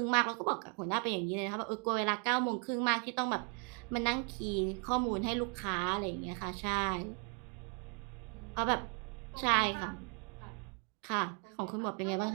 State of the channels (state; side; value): quieter; left; 36.4 dB